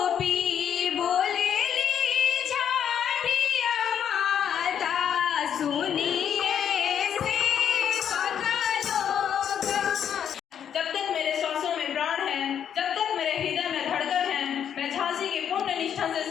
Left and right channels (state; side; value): quieter; right; 8.8 dB